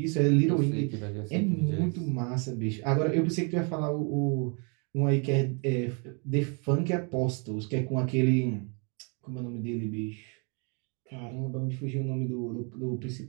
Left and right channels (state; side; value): quieter; left; 36.1 dB